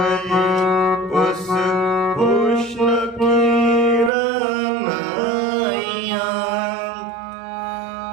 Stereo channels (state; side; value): drops out; left; at 4.1 s